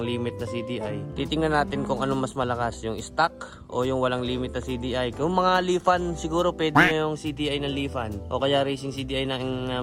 limit na CDI, titingnan natin kung anong mas malakas, yung stock o yung walang limit na CDI. Kung mga Lifan, siguro pwede na yung CDI ng Lifan o kaya racing CDI ng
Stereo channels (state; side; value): identical; both; correlation 1.00